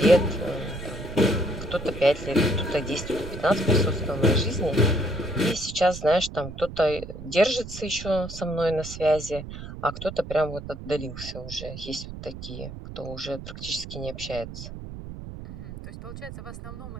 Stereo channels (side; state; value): right; noise; rumble, 11 dB below the sound